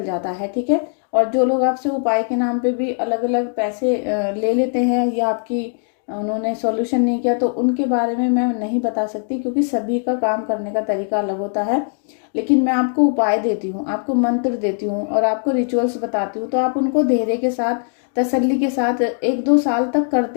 जाता है। ठीक है, और जो लोग आपसे उपाय के नाम पे भी अलग अलग पैसे ले लेते हैं, या आपकी उन्होंने सॉल्यूशन नहीं किया, तो उनके बारे में मैं नहीं बता सकती, क्योंकि सभी का काम करने का तरीका अलग होता है। लेकिन मैं आपको उपाय देती हूँ, आपको मंत्र देती हूँ, और आपको रिचुअल्स बताती हूँ, तो आप उनको धैर्य के साथ, तसल्ली के साथ 1-2 साल तक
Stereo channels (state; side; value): silent; right; 57 dB below the other